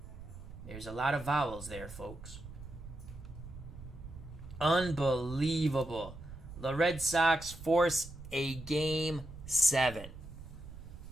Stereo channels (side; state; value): right; noise; rumble, 14 dB below the sound